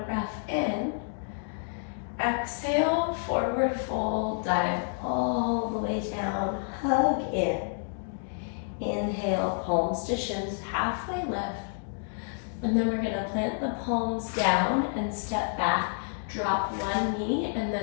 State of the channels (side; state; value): right; silent; digital silence